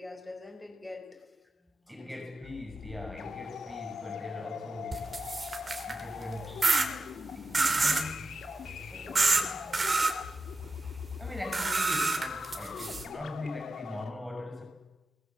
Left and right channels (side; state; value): both; normal; correlation 0.91